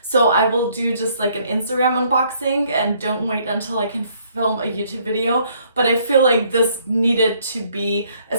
So I will do just like an Instagram unboxing and don't wait until I can film a YouTube video, but I feel like this needed to be,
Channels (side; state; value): both; inverted; correlation -0.65